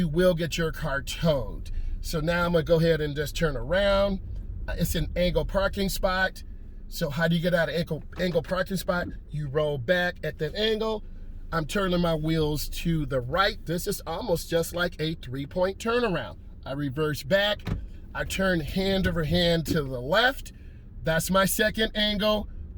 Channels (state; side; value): identical; both; correlation 1.00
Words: will get your car towed. So now I'm gonna go ahead and just turn around. It's an angle parking spot. So how do you get out of angle parking spot? You roll back at that angle. I'm turning my wheels to the right. This is almost just like a 3-point turnaround. I reverse back. I turn hand over hand to the left. That's my second angle.